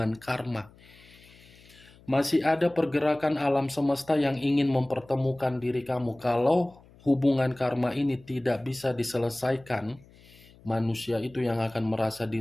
karma. Masih ada pergerakan alam semesta yang ingin mempertemukan diri kamu. Kalau hubungan karma ini tidak bisa diselesaikan, manusia itu yang akan merasa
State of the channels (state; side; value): noise; left; hum, 25 dB below the sound